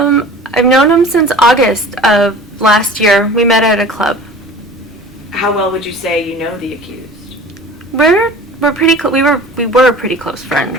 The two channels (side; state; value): both; normal; correlation 0.41